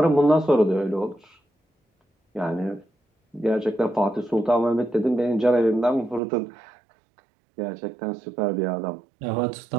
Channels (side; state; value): left; drops out; at 6.2 s